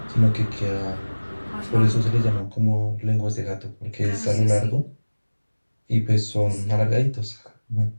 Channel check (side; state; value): both; inverted; correlation -1.00